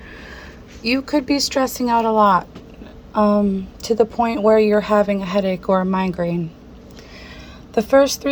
you could be stressing out a lot, to the point where you're having a headache or a migraine. The first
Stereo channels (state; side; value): identical; both; correlation 1.00